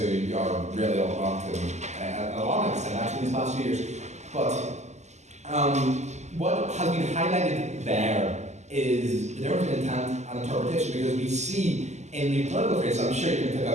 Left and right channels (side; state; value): left; late; 0.33 ms